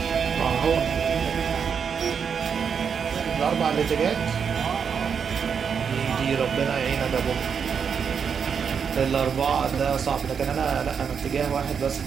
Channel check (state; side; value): quieter; left; 6.7 dB